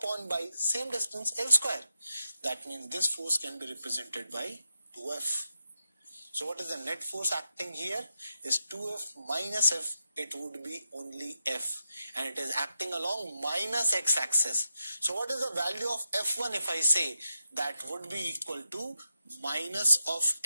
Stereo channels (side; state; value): both; inverted; correlation -0.86